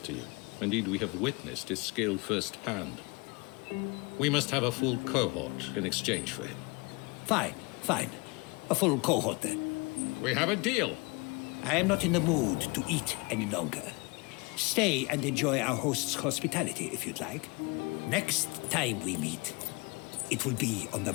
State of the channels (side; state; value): right; quieter; 27.5 dB